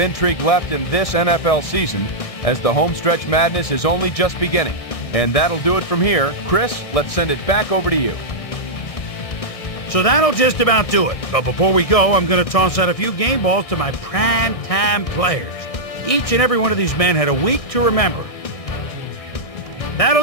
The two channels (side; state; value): right; late; 1.6 ms